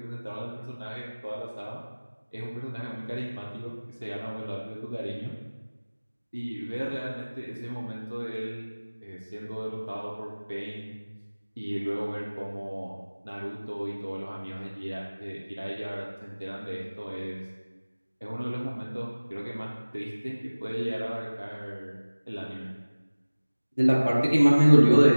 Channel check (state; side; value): inverted; both; correlation -1.00